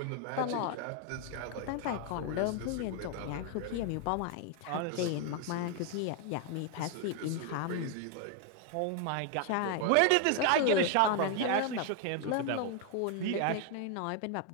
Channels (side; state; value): both; different; correlation 0.00